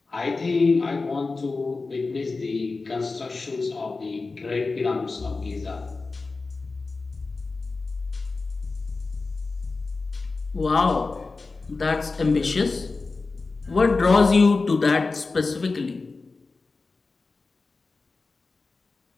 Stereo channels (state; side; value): quieter; right; 3.9 dB